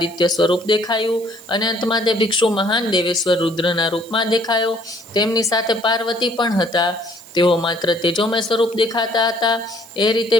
સ્વરૂપ દેખાયું અને અંતમાં તે ભિક્ષુ મહાન દેવેશ્વર રુદ્રના રૂપમાં દેખાયો. તેમની સાથે પાર્વતી પણ હતા. તેઓ માત્ર તેજોમય સ્વરૂપ દેખાતા હતા. એ રીતે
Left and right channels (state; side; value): noise; right; hiss, 21 dB below the sound